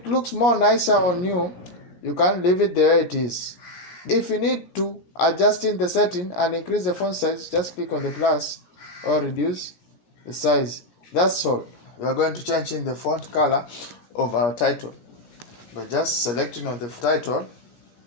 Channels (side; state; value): right; late; 17 ms